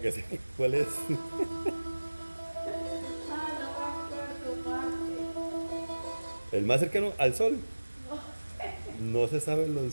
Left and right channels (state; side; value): inverted; both; correlation -1.00